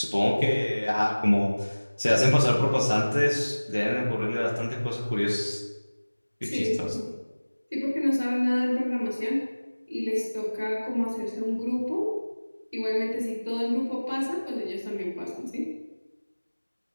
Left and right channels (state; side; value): inverted; both; correlation -1.00